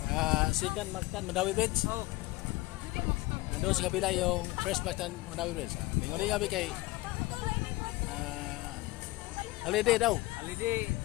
Second Mactan Mandawi Bridge. Oh. Ando sa kabila yung First Mactan Mandawi Bridge. Lingon kami kay holiday daw. Holiday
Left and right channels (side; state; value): right; quieter; 20.2 dB